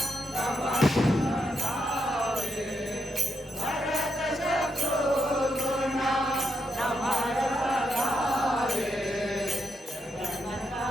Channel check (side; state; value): both; normal; correlation 0.82